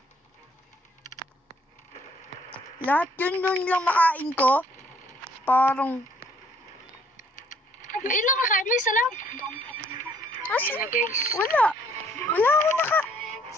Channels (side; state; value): both; normal; correlation 0.62